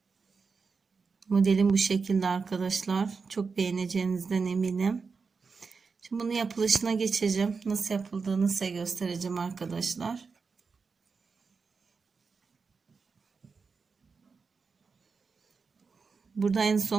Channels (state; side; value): quieter; left; 5.0 dB